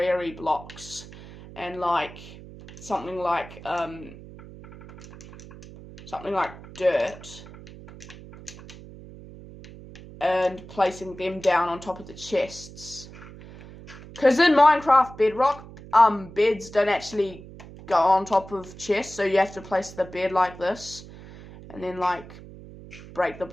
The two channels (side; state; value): right; noise; hum, 17 dB below the sound